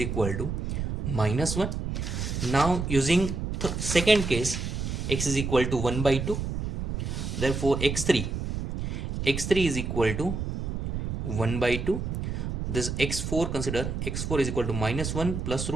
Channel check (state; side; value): noise; right; rumble, 3 dB below the sound